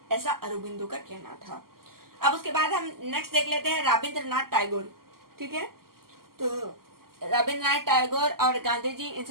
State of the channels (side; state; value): left; late; 0.92 ms